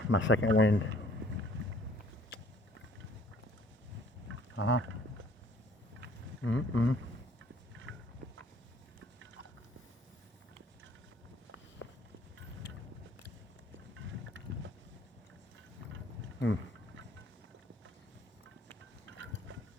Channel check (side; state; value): both; normal; correlation 0.59